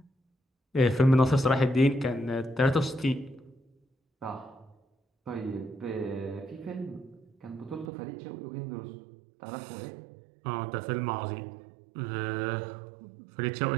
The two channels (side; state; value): left; drops out; at 7.9 s